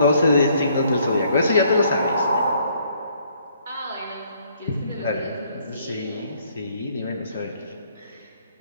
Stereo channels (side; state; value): both; inverted; correlation -0.66